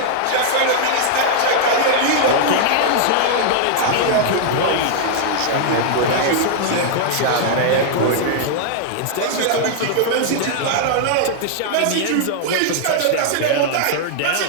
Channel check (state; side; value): different; both; correlation -0.01